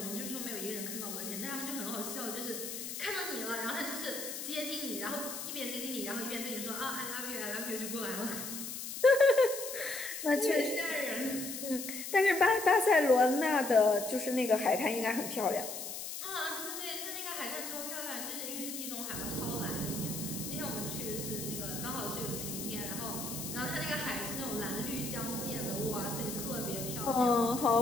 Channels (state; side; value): noise; left; hiss, 6 dB below the sound